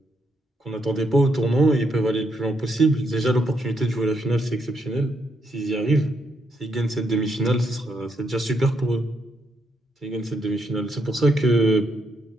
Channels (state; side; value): normal; both; correlation 0.77